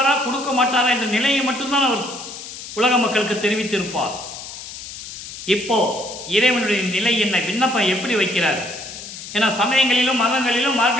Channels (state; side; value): noise; left; hiss, 11 dB below the sound